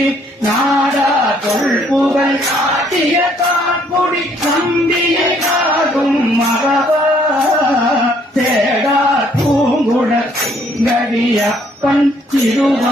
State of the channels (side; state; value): both; normal; correlation 0.65